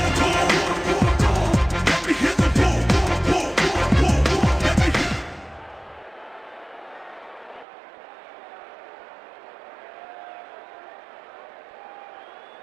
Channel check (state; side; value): drops out; left; at 7.7 s